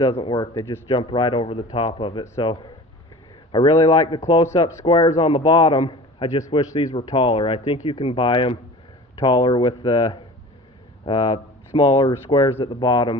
work. They just jump right over the top of it. So I really like the close-up squares on the bottom. I just wish these were taller. I think you can buy them taller with the smaller squares at the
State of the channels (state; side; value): normal; both; correlation 0.39